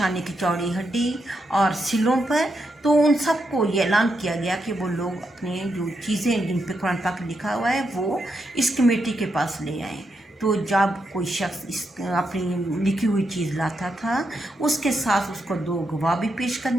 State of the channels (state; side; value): normal; both; correlation 0.83